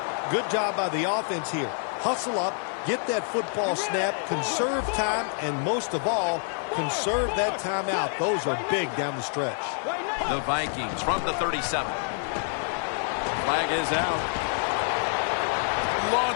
Good job by the offense here. Hustle up, get that football snap, conserve time, and most of all, conserve that timeout. Those are big down the stretch. The Vikings from the 37. Flag is out.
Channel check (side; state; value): right; silent; 57 dB below the other